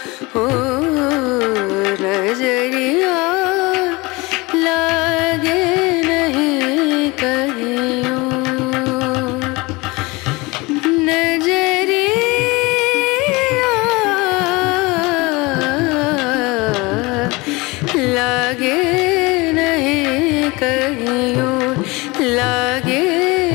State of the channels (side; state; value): right; quieter; 24.0 dB